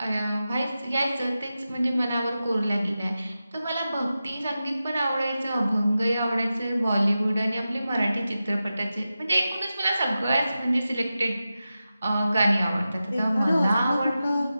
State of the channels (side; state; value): both; inverted; correlation -0.92